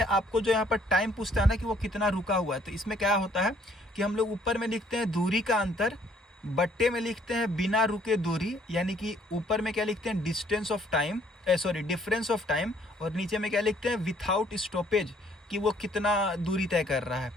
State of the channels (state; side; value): normal; both; correlation 0.63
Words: आपको जो यहाँ पर टाइम पूछता है ना कि वो कितना रुका हुआ है, तो इसमें क्या होता है कि हम लोग ऊपर में लिखते हैं दूरी का अंतर, बट्टे में लिखते हैं बिना रुके दूरी, यानी कि ऊपर में क्या लिखते हैं distance of time, difference of time, और नीचे में क्या लिखते हैं विथआउट स्टॉपेज, कि वो कितना दूरी तय कर रहा है